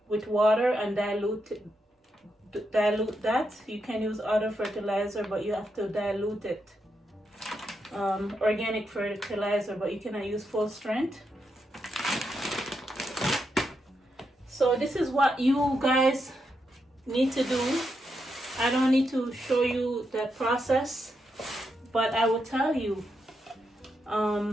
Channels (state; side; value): normal; both; correlation 0.83